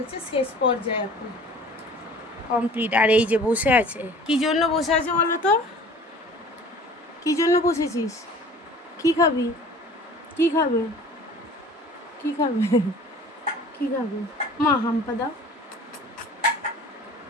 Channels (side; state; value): both; normal; correlation 0.46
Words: শেষ পর্যায়ে এখন কমপ্লিট। আর এই যে বসে আছে, কি জন্য বসে আছে বলো তো? কি জন্য বসেছিস? কি খাবি? কি খাবে? কি খাবে? কি খাবে? মা হাম্পা দাও।